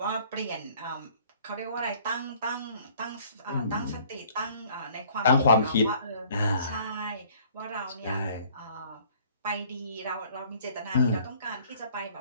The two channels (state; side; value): inverted; both; correlation -0.55